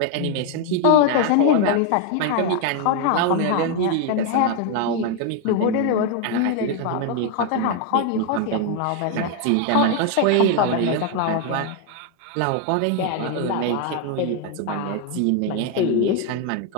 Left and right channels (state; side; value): different; both; correlation 0.01